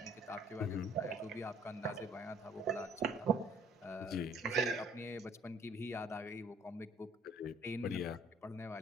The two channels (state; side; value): normal; both; correlation 0.58